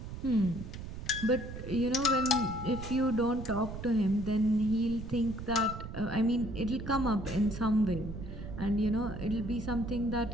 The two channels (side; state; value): right; noise; rumble, 9 dB below the sound